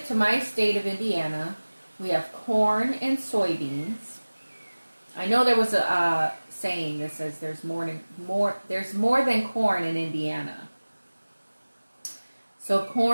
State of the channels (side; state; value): both; inverted; correlation -1.00